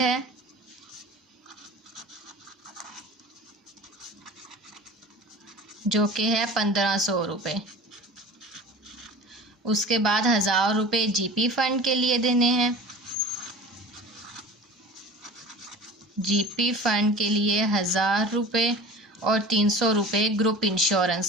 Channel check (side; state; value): both; normal; correlation 0.38